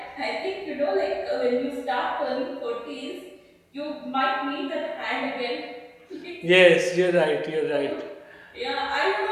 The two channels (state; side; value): identical; both; correlation 1.00